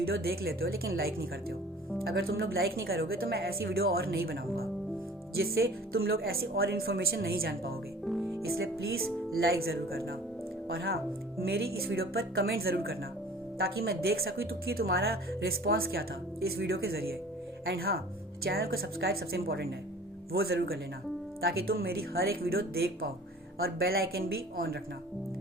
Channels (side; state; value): both; normal; correlation 0.46